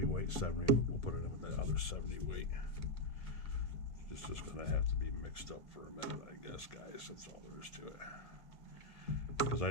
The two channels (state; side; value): late; right; 1.9 ms